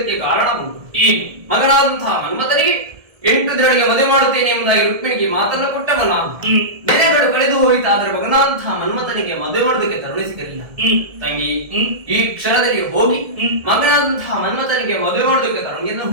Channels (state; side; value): late; left; 1.7 ms